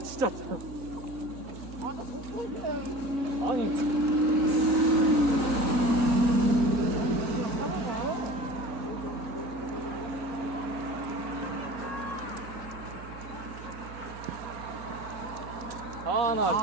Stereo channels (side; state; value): right; noise; hum, 14 dB below the sound